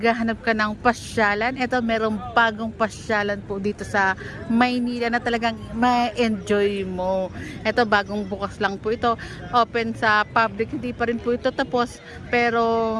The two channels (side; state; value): both; identical; correlation 1.00